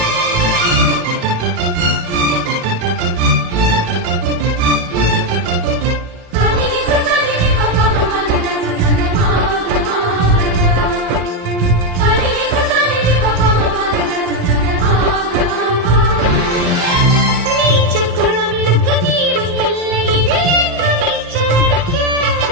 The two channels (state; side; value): late; left; 17 ms